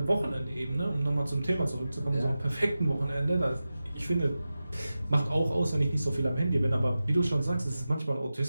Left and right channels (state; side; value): inverted; both; correlation -0.94